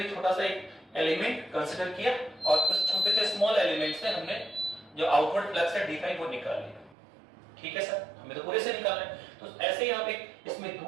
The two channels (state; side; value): drops out; left; at 7.0 s